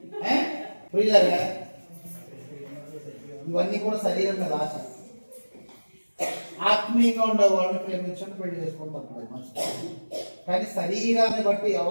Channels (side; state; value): both; inverted; correlation -1.00